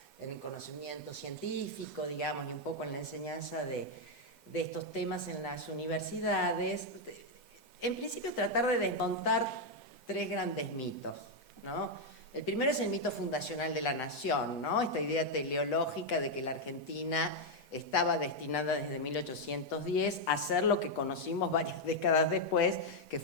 en el conocimiento científico, digamos, y un poco en la enseñanza de estos temas en las universidades, en principio tratar de desmontar tres grandes mitos, ¿no? El primero es el mito fundacional de la nación, ¿no? Esta idea teleológica de que la Argentina estaba destinada desde 1810 a ser lo que conocimos varias décadas después, que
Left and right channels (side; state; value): right; late; 1.6 ms